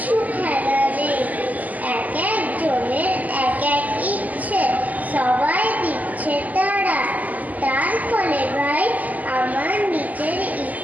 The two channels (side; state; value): left; late; 0.078 ms